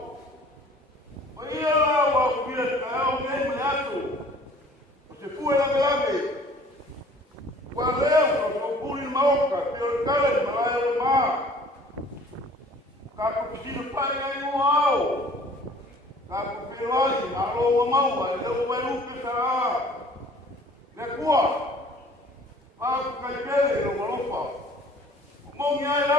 O ia la wa kuia ka o me me atu. O te kuwa la grave. Wa leo ko puri maoka, pio kale malaya ma. Ka ko pisino pai ai no ao. Ka ko peloi aro wa mau ai leo wa lupe sa. Ne kuwa. Pa ka kele no malopa. Mongi ai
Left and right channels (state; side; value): normal; both; correlation 0.52